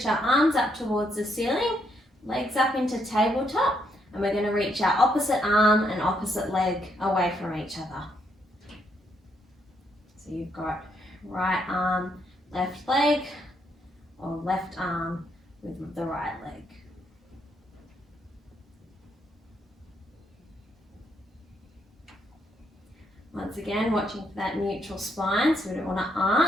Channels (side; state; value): both; normal; correlation 0.75